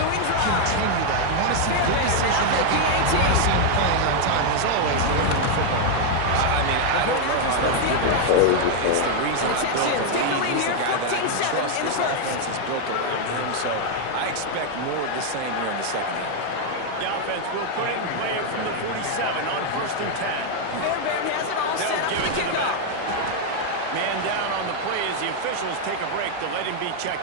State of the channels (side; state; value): both; different; correlation 0.01